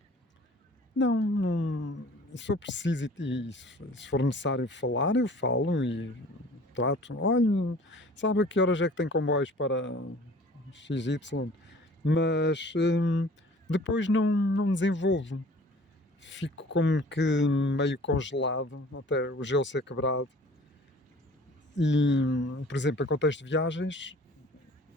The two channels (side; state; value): both; normal; correlation 0.49